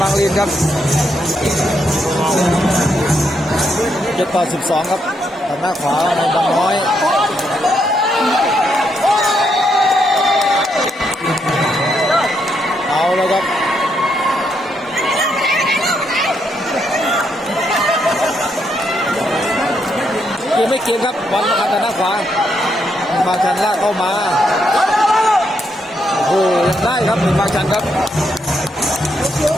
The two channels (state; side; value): normal; both; correlation 0.78